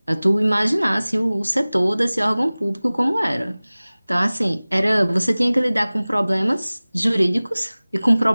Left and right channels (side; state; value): both; inverted; correlation -0.99